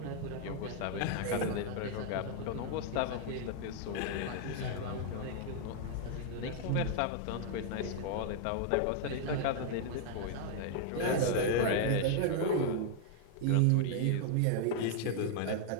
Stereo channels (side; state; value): both; different; correlation 0.00